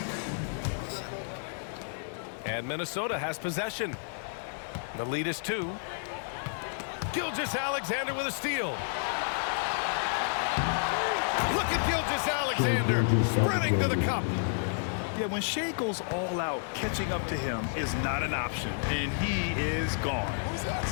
And Minnesota has possession. The lead is 2. Gilgeous-Alexander with a steal. Look at Gilgeous-Alexander sprinting to the cup. Yeah, when Shea goes all out, catching up to him is not an option, and he is gone.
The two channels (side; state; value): right; silent; digital silence